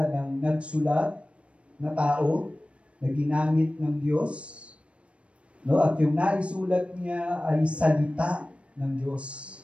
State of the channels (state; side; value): late; left; 0.061 ms